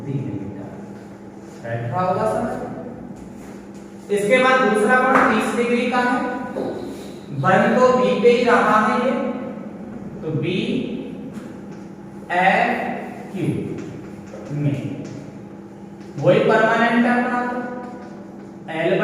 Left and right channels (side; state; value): both; identical; correlation 1.00